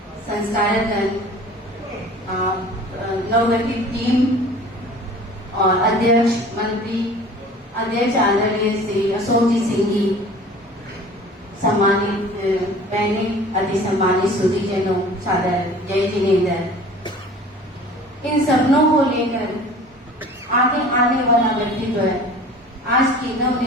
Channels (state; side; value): normal; both; correlation 0.44